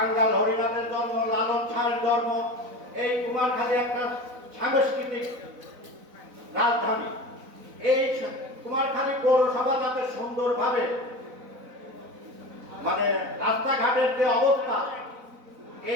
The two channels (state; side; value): late; left; 4.0 ms